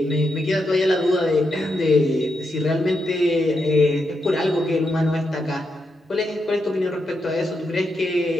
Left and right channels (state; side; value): normal; both; correlation 0.83